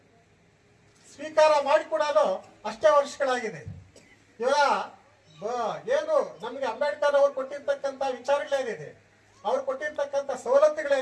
ಸ್ವೀಕಾರ ಮಾಡಿ ಕೂಡ ಅಷ್ಟೇ ವರ್ಷಗಳಾಗಿದೆ. ಇವಾಗ ಏನು ನಮ್ಗೆ ಅಂಬೇಡ್ಕರ್ ಅವ್ರು ಕೊಟ್ಟಿರ್ತಕ್ಕಂಥ ವಿಚಾರಗಳೇನಿದೆ, ಅವ್ರು ಕೊಟ್ಟಿರ್ತಕ್ಕಂಥ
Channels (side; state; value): both; identical; correlation 1.00